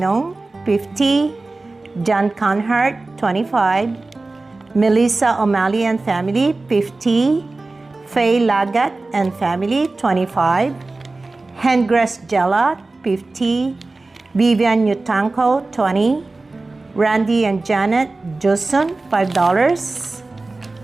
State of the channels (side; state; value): left; quieter; 3.3 dB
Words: 50. John Conhart, 25. Melissa O'Malley and family, 50. Faye Lagat and family, 25. Hengress Jella, 50. Vivian Yutanko, 20. Randy and Janet Joson, $5.